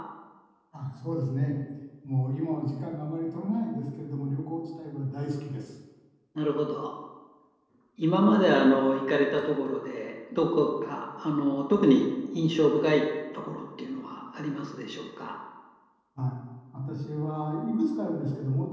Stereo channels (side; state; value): both; identical; correlation 1.00